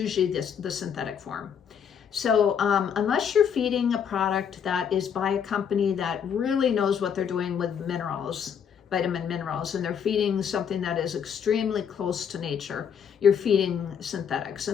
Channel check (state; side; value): quieter; right; 7.7 dB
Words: the synthetic form. So unless you're feeding a product that is by a company that really knows what they're doing with minerals, vitamin minerals, and they're feeding something that is extremely close to nature, you're feeding synthetics,